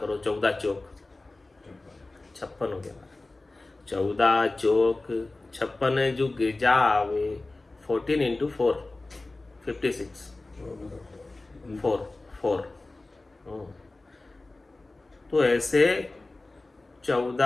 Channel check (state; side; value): quieter; right; 3.1 dB